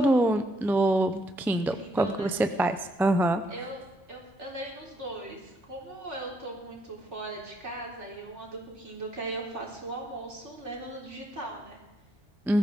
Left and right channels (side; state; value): both; normal; correlation 0.74